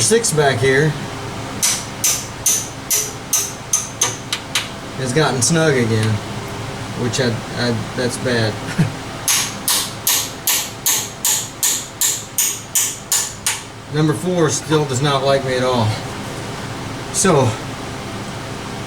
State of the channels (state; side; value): identical; both; correlation 1.00